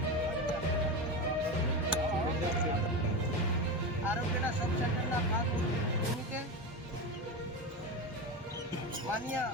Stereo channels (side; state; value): both; normal; correlation 0.20